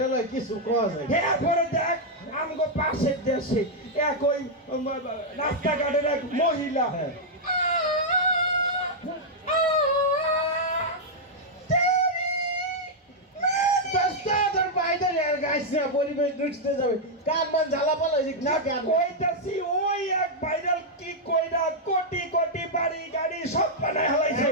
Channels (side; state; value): both; normal; correlation -0.04